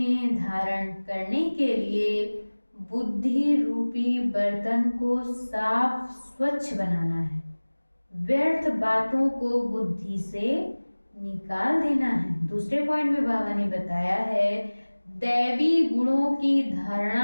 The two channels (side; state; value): both; inverted; correlation -1.00